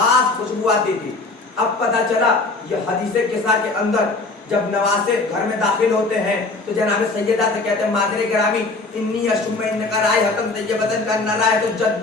आती थी। अब पता चला ये हदीसे किस्सा के अंदर जब नवासे घर में दाखिल होते हैं तो जनाब सैयदा से कहते हैं, मादरे ग्रामी इन्नी अशुम इनका राय हकम तैयबतन का नरा है तो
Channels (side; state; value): right; quieter; 3.4 dB